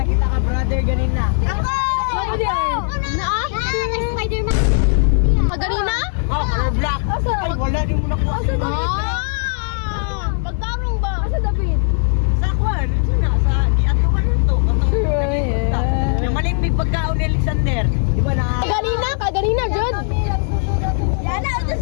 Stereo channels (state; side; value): silent; right; 63 dB below the other